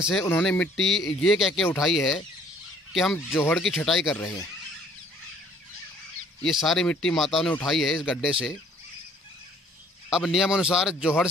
से उन्होंने मिट्टी ये कह के उठाई है कि हम जोहड़ की छटाई कर रहे हैं। ये सारी मिट्टी माताओं ने उठाई है इस गड्ढे से। अब नियम अनुसार जोहड़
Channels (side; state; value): both; normal; correlation 0.58